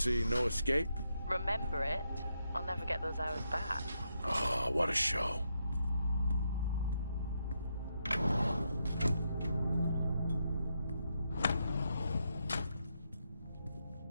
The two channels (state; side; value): inverted; both; correlation -0.82